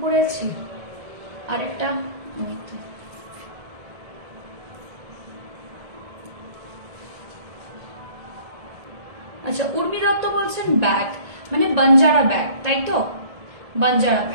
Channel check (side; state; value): left; late; 1.7 ms